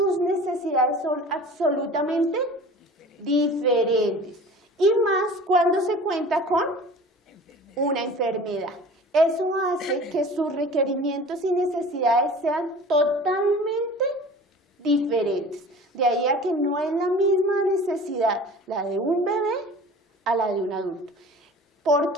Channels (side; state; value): both; normal; correlation 0.41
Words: necesidades son absolutamente diferentes. Y más cuando se cuenta con una enfermedad. Eso hace que sus requerimientos y necesidades sean totalmente diferentes. De ahí a que no es la misma necesidad la de un bebé a la de un adulto. ¿Por